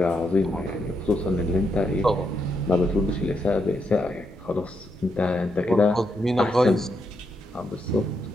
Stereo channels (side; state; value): both; normal; correlation 0.80